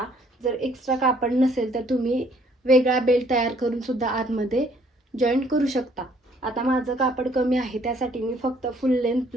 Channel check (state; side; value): normal; both; correlation 0.62